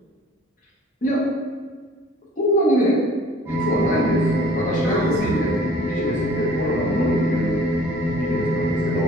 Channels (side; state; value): both; normal; correlation 0.51